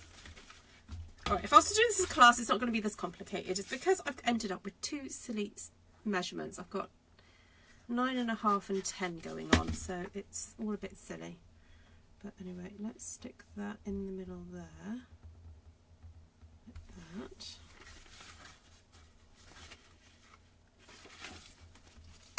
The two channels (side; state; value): both; identical; correlation 1.00